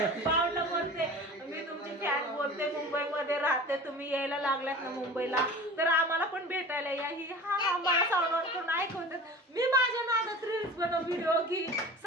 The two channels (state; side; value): normal; both; correlation 0.38